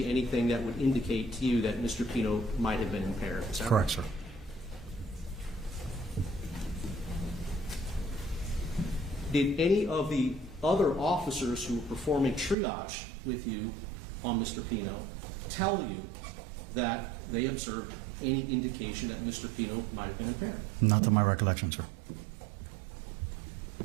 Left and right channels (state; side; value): drops out; left; at 12.6 s